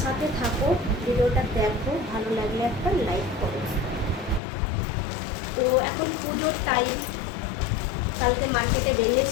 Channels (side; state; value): right; drops out; at 4.4 s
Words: সাথে থাকো, ভিডিওটা দেখো, ভালো লাগলে একটা লাইক করো। তো এখন পুজোর টাইম, কালকে মার্কেটে